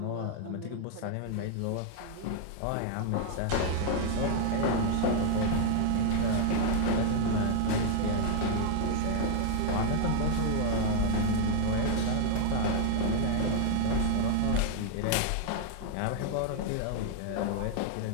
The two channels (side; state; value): both; different; correlation 0.00